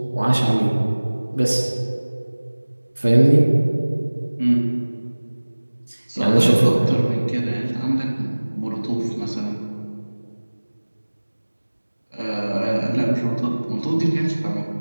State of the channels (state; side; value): inverted; both; correlation -1.00